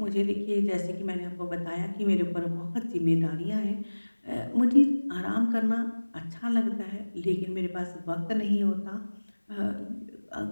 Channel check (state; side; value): inverted; both; correlation -1.00